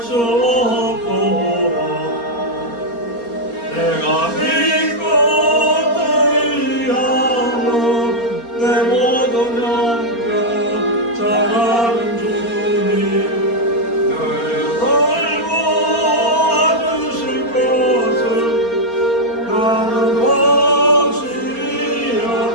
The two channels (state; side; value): late; right; 4.3 ms